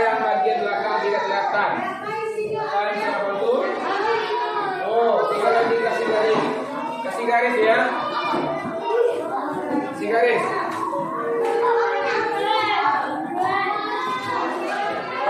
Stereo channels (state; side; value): identical; both; correlation 1.00